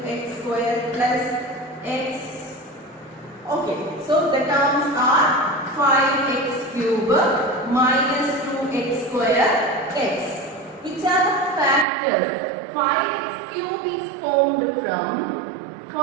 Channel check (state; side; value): drops out; left; at 11.9 s